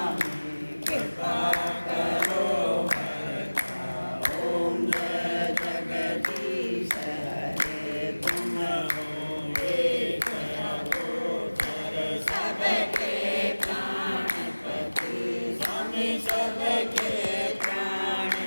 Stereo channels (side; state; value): both; inverted; correlation -1.00